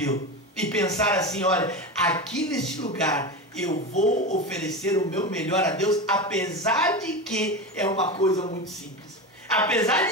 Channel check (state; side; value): normal; both; correlation 0.22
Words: e pensar assim: olha, aqui neste lugar eu vou oferecer o meu melhor a Deus, apesar de que é uma coisa muito simples, apesar